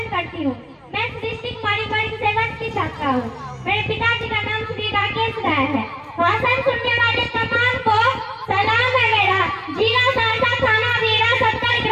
करती हूँ। मैं सृष्टि कुमारी वर्ग 7 की छात्रा हूँ। मेरे पिताजी का नाम श्री राकेश राय है। भाषण सुनने वाले तमाम को सलाम है मेरा। जिला सहरसा, थाना वीरा, 70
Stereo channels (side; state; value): both; identical; correlation 1.00